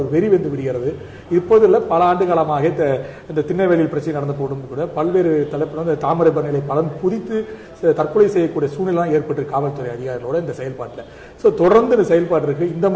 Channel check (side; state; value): both; identical; correlation 1.00